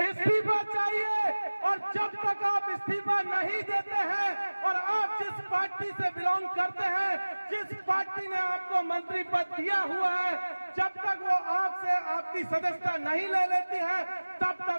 चाहिए। और जब तक आप इस्तीफा नहीं देते हैं और आप जिस पार्टी से बिलोंग करते हैं, जिस पार्टी ने आपको मंत्री पद दिया हुआ है, जब तक वो आपसे आपकी सदस्यता नहीं ले लेती है, तब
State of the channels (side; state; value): both; inverted; correlation -1.00